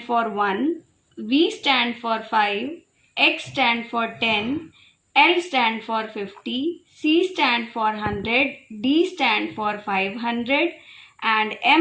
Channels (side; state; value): both; identical; correlation 1.00